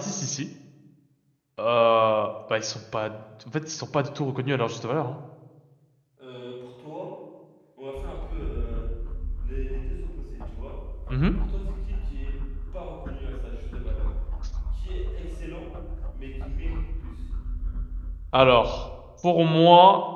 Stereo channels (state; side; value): identical; both; correlation 1.00